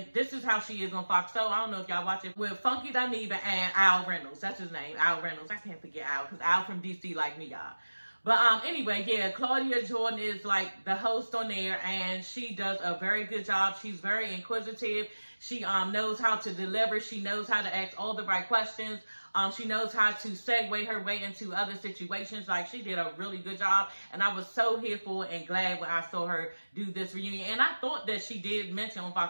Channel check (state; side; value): inverted; both; correlation -1.00